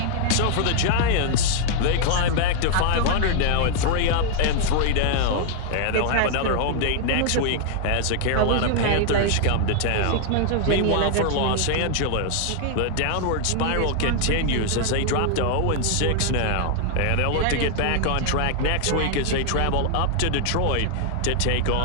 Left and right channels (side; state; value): both; different; correlation 0.00